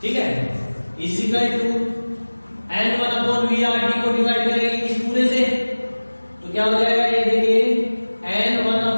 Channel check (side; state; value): both; inverted; correlation -1.00